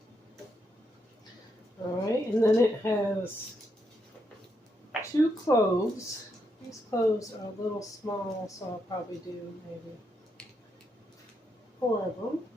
Alright, and then it has 2 cloves. These cloves are a little small, so I'll probably do maybe 4 of them.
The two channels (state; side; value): normal; both; correlation 0.80